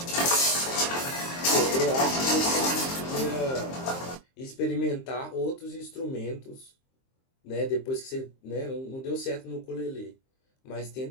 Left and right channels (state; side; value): late; right; 23 ms